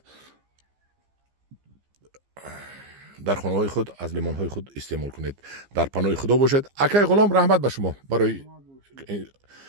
در خانه های خود از لیمون های خود استعمال کنید. در پناه خدا باشید. اکای غلام رحمت به شما برای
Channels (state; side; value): late; left; 15 ms